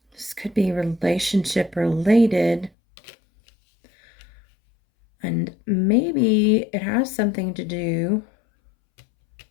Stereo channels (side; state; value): right; drops out; at 2.7 s